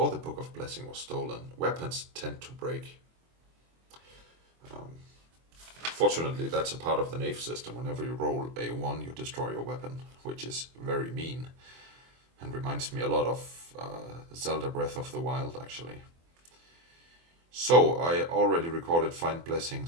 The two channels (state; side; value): late; left; 24 ms